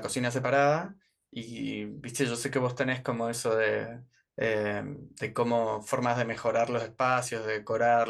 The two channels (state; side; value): identical; both; correlation 1.00